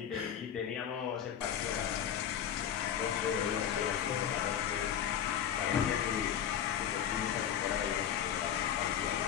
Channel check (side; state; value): right; quieter; 9.4 dB